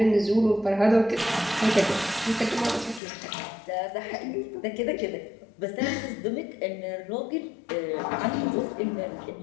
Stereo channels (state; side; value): drops out; right; at 3.0 s